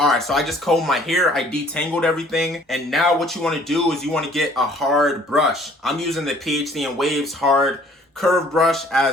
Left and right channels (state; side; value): normal; both; correlation 0.56